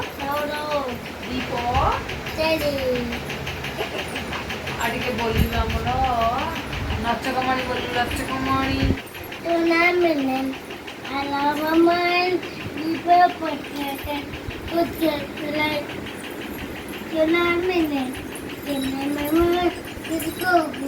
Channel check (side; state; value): both; identical; correlation 1.00